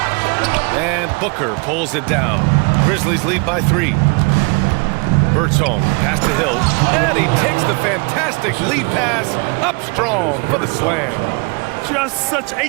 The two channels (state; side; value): quieter; left; 31.6 dB